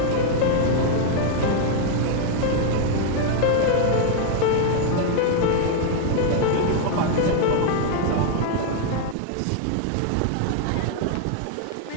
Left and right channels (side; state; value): both; different; correlation 0.00